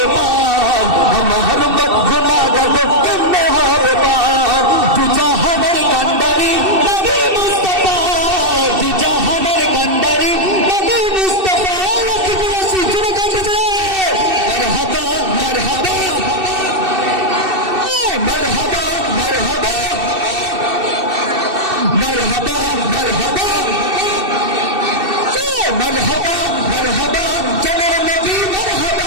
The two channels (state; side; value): late; left; 2.7 ms